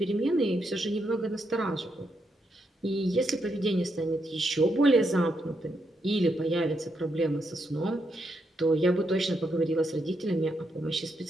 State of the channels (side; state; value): both; normal; correlation 0.80